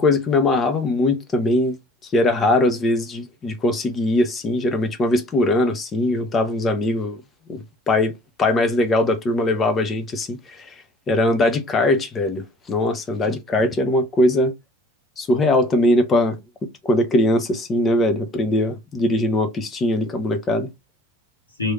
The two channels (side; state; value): both; normal; correlation 0.52